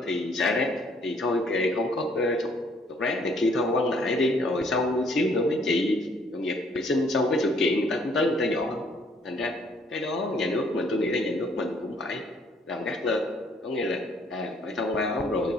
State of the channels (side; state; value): both; normal; correlation 0.64